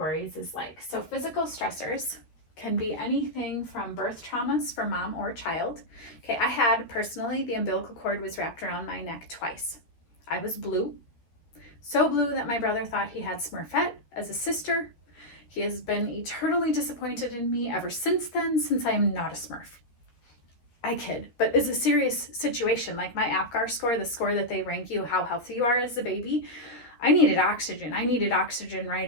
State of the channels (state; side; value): late; right; 13 ms